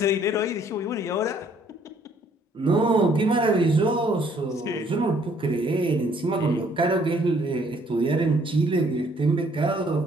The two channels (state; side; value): normal; both; correlation 0.63